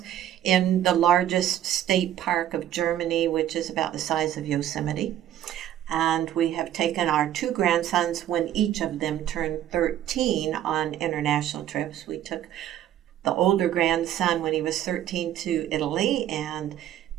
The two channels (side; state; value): left; quieter; 11.7 dB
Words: in the largest state park of Germany, which is about the size of Yosemite. And we have taken our two grandsons when each of them turned 13 on international trips. We took the older grandson when he was 13 to Italy and